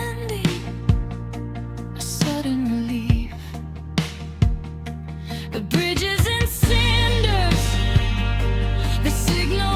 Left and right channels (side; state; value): both; identical; correlation 1.00